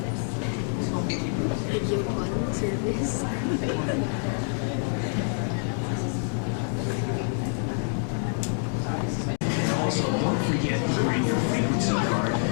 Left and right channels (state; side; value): silent; right; 58 dB below the other